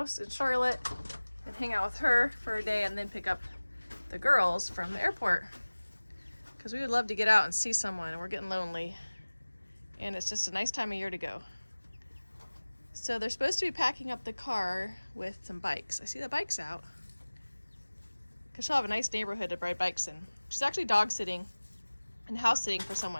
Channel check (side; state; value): both; inverted; correlation -1.00